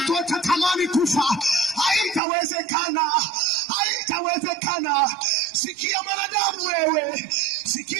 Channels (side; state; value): left; drops out; at 2.2 s